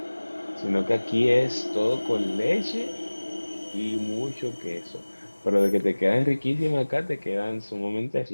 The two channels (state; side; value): inverted; both; correlation -1.00